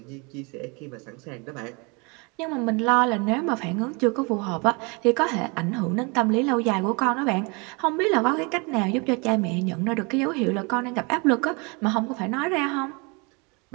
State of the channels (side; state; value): left; quieter; 30.1 dB